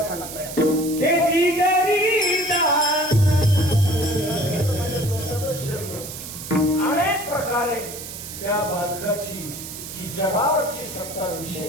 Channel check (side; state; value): right; noise; hiss, 10 dB below the sound